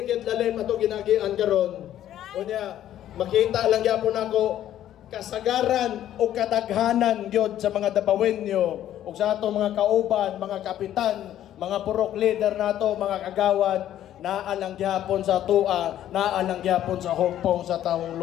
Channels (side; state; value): right; quieter; 11.8 dB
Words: kit lalim ato ginagian karon. Unya makita lang gyapon ako kasagaran o kadaghanan gyud sa mga dabawenyo ug sa ato mga kauban, mga kapitan, mga purok leader nato, mga kagawad naalang gyapon sa tua, naalang gyapon sa hugpong sa tawong